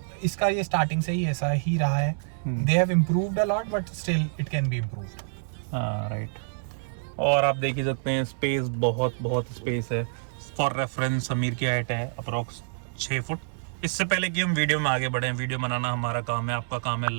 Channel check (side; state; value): left; silent; 59 dB below the other